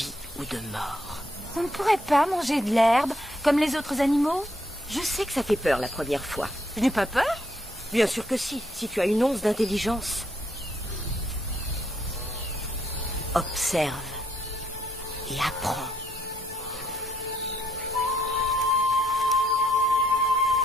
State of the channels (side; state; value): both; normal; correlation 0.73